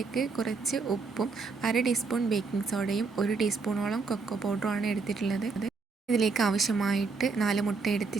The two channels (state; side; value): quieter; left; 4.4 dB